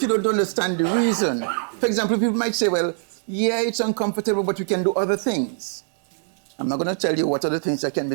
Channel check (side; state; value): left; silent; 62 dB below the other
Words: you don't understand the reason, for example, people might say, well, yeah, it's uncomfortable, but we can do other things. I'm not going to tell you what other things that can